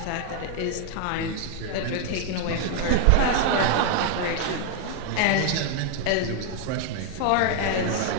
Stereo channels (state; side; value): different; both; correlation 0.00